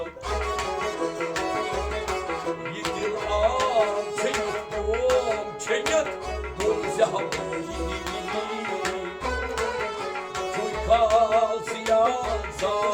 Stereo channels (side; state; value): both; identical; correlation 1.00